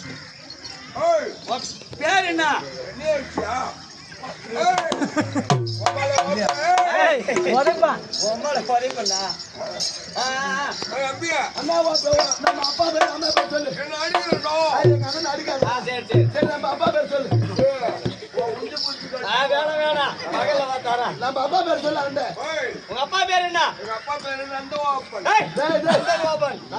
உன் பேர் என்ன? அண்ணா நம்ம அப்பா பேர் அம்மா பேர் சொல்லு. எங்க அண்ணன் அடிக்காது. சரி, நம்ம அப்பா பேர் சொல்லு. நம்ம அப்பா பேர் சொல்லு. உங்க அப்பா பேர் என்ன? எங்க அப்பா பேரு நந்தகோபன். நந்தகோபன்.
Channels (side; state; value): both; identical; correlation 1.00